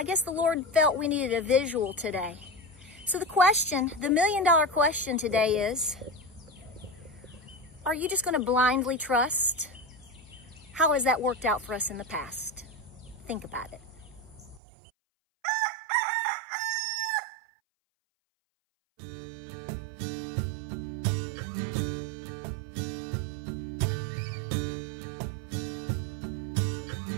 guess the Lord felt we needed a visual today. So the question, the million-dollar question today is, are you just gonna blindly trust? How has that worked out for us in the past? Think about it.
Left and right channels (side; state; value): left; drops out; at 14.6 s